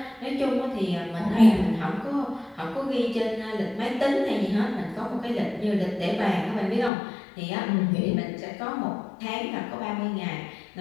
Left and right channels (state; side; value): drops out; right; at 6.9 s